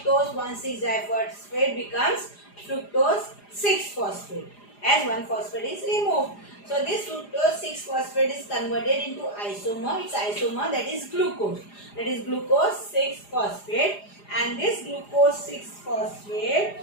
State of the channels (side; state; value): right; late; 4.9 ms